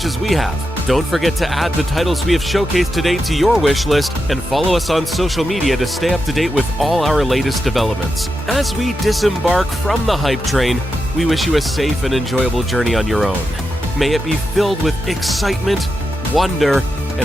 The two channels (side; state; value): both; normal; correlation 0.88